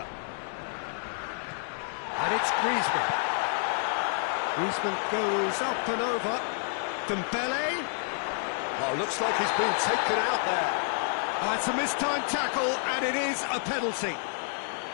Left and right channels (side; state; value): right; silent; digital silence